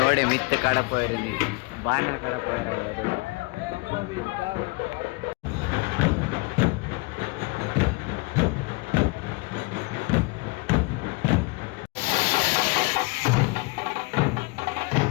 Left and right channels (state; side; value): quieter; right; 27.0 dB